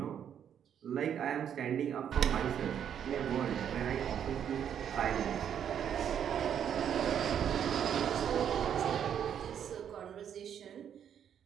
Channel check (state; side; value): quieter; left; 8.9 dB